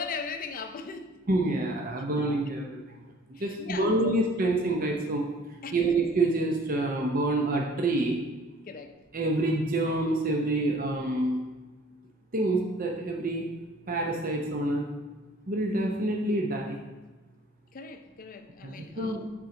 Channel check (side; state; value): both; normal; correlation 0.52